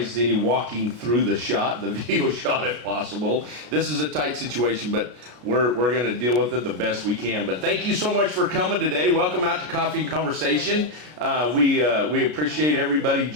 any walking through the video shot if possible. This is a tight situation, but we're going to deal with it the best we can. But thank you so much for coming today. Welcome out to Coffee and Conversation. We appreciate everybody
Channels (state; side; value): late; left; 33 ms